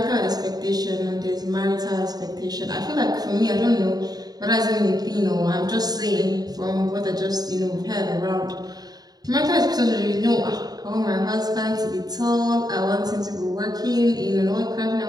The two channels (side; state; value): left; late; 0.19 ms